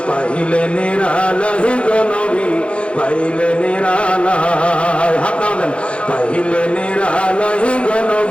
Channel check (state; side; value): late; right; 0.059 ms